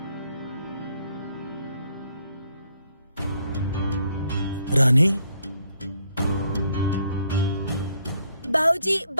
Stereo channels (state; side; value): inverted; both; correlation -0.70